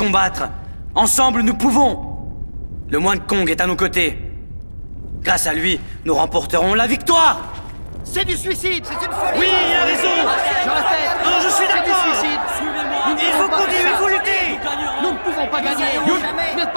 Ensemble, nous pouvons. Le moine Kong est à nos côtés. Grâce à lui, nous remporterons la victoire. C'est du suicide, c'est une folie. Oui, il a raison. Je répète. Non, je suis d'accord. C'est du suicide. Il faut continuer, il faut lutter. Nous ne pouvons pas gagner. Vous n'êtes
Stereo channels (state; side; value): inverted; both; correlation -1.00